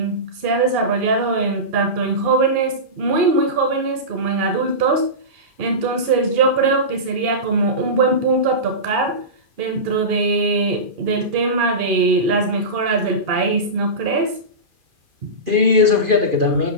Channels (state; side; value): late; left; 2.4 ms